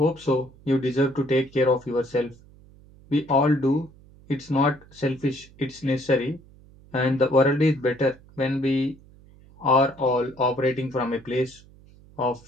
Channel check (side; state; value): right; noise; hum, 25 dB below the sound